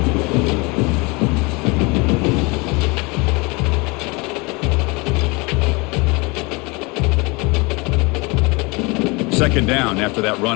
Second down after that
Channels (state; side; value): quieter; right; 27.2 dB